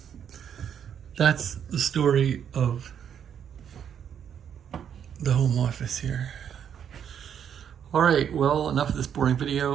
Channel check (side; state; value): left; quieter; 8.6 dB